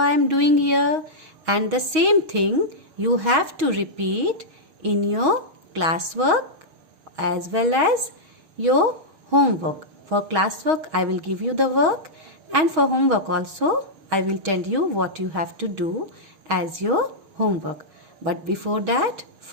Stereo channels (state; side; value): late; left; 6.3 ms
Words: am doing here, and the same thing you have to repeat in your classwork as well as your homework. For classwork I will give you the work, and for homework also I will tell you what you have to do as your homework. But before that,